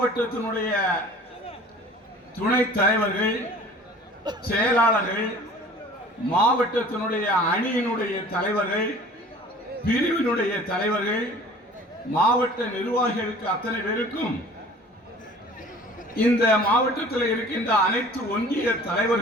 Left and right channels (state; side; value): normal; both; correlation 0.47